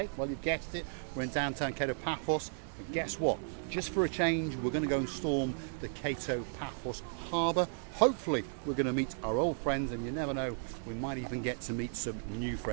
Well, you've guessed it, we're in downtown Cato Paphos, and guess what? Just for a change, we're going to go and storm the Cato Paphos harbour. Hopefully, we're going to meet our old friends, and you never know, we might even get to meet some new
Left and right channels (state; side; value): silent; left; digital silence